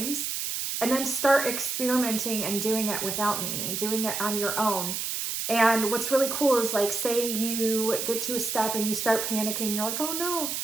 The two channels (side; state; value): right; noise; hiss, 2 dB below the sound